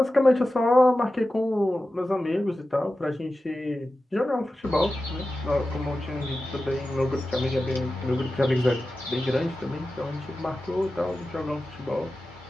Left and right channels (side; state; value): both; normal; correlation 0.94